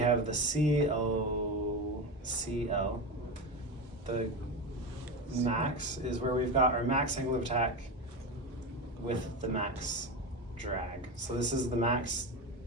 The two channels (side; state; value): both; normal; correlation 0.20